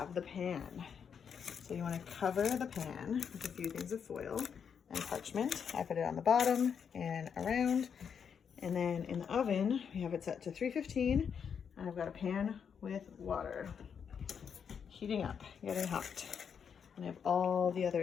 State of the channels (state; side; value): quieter; right; 7.1 dB